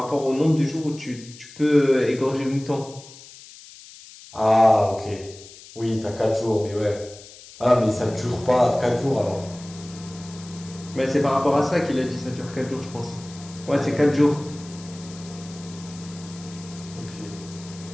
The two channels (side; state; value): left; noise; hiss, 19 dB below the sound